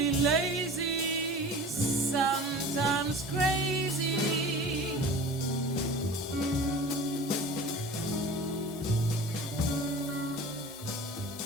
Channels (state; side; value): normal; both; correlation 0.39